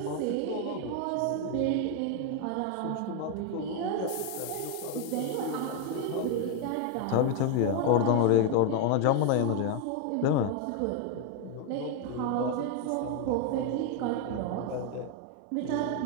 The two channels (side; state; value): both; different; correlation 0.00